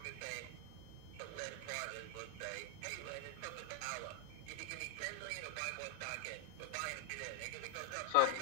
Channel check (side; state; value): both; different; correlation 0.00